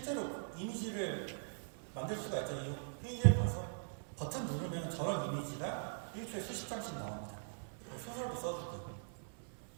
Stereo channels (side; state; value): left; silent; 50 dB below the other